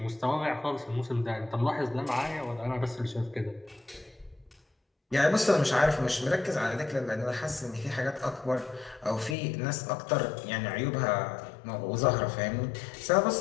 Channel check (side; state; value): right; drops out; at 9.3 s